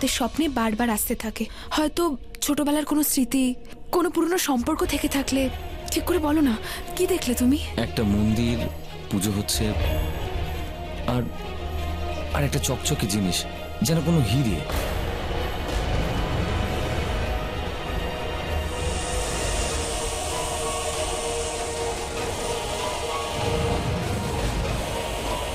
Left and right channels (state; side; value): identical; both; correlation 1.00